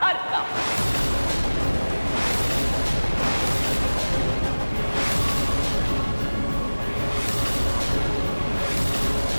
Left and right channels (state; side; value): inverted; both; correlation -1.00